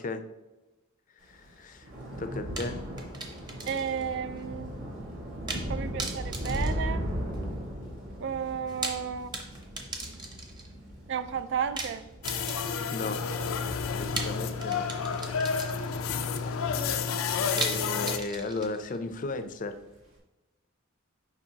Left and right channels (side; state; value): both; normal; correlation 0.15